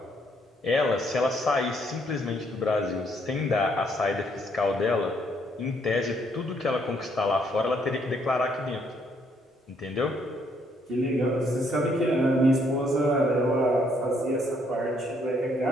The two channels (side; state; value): both; normal; correlation 0.69